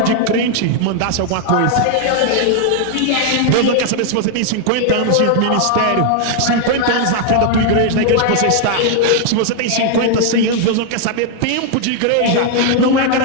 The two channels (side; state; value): both; different; correlation 0.00